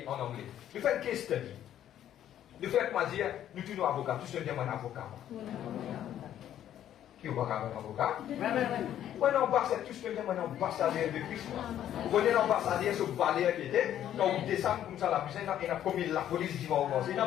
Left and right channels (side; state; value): right; quieter; 11.1 dB